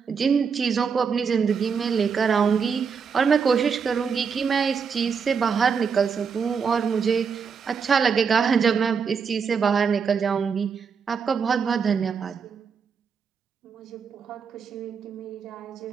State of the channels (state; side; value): quieter; left; 6.1 dB